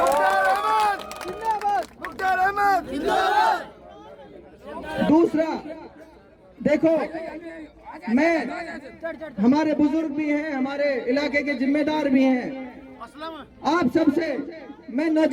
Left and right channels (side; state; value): both; identical; correlation 1.00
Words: दूसरा देखो, मैं, हमारे बुजुर्ग भी हैं, हमारे इलाके के जिम्मेदार भी हैं, आप सबसे मैं